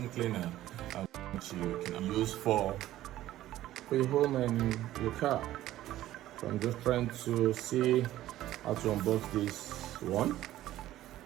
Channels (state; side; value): quieter; left; 14.2 dB